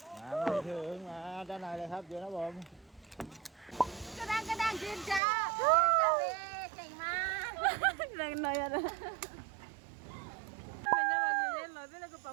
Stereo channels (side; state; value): left; drops out; at 5.2 s